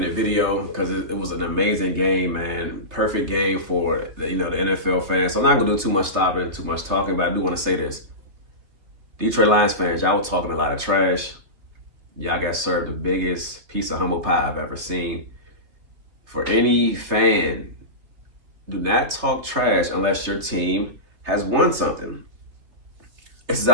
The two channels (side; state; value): left; late; 3.2 ms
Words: video because it was an amazing game, man. Perfect game for the NFL fans. So I'm not gonna do too much stopping, too much talking, but I do want to say this. Detroit Lions fans, y'all were talking a lot of trash. Y'all got served the biggest piece of humble pie I've ever seen. For any fan, do not talk trash unless your team has won something. It's